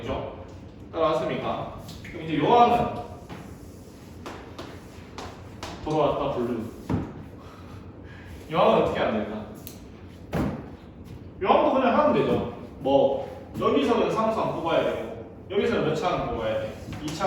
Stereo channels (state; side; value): identical; both; correlation 1.00